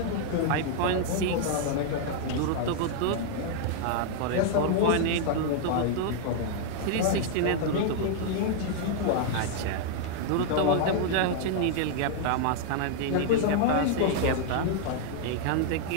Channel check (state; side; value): different; both; correlation 0.00